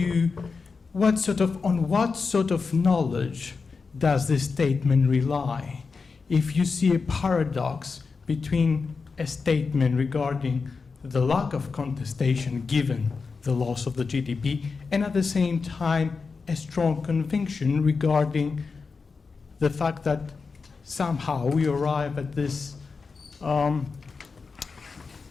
what sort of knowledge does this statement rely? If you see a paradox between a statement regarding the lack of contestation given the loss of the GDP, and at the same time a strong conviction regarding the fact that somehow we arrive at this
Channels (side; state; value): right; quieter; 4.7 dB